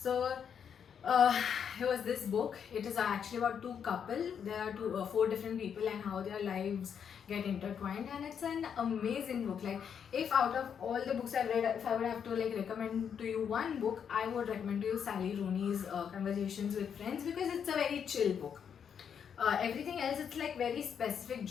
it was this book. It is actually about two couple. There are four different people and how their lives get intertwined, and it's an amazing book. Like, if out of all the books I've read, if I would have to like recommend to you one book, I would recommend to you Sally Rooney's Conversations with Friends, because it's a very chill book. Everything else, it's like very specific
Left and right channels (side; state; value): right; quieter; 7.6 dB